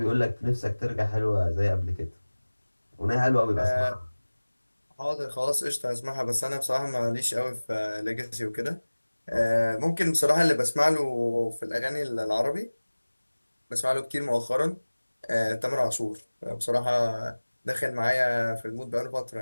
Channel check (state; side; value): inverted; both; correlation -1.00